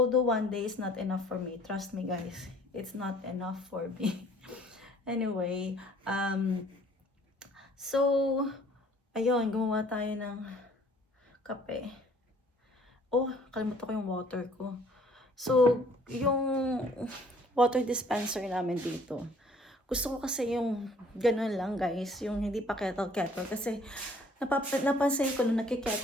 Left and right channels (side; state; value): both; normal; correlation 0.57